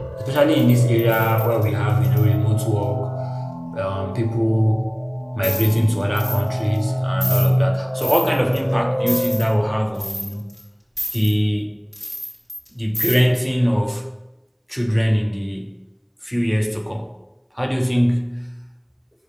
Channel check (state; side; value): identical; both; correlation 1.00